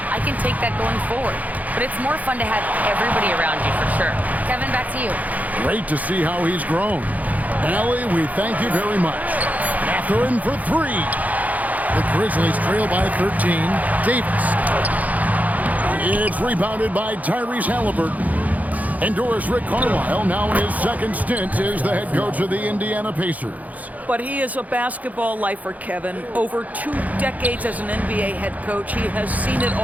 I can take that going forward. But it's more fun to have everybody around you, for sure. Kevin, back to you. Great to see how he's grown. Allie, we thank you very much. Mathurin for 3. The Grizzlies trail by 13. Davis. It's rebounded by Tyrese Halliburton. And Doris Rick Carlisle, now in his second stint, is the head coach of the Indiana Pacers. But he is a basketball lifer, Kevin. Over 2 decades as an NBA head coach, he has seen it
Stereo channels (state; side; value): late; left; 0.077 ms